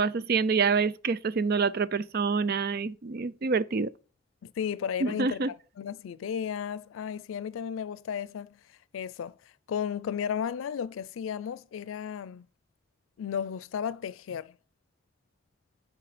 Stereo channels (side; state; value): both; normal; correlation 0.09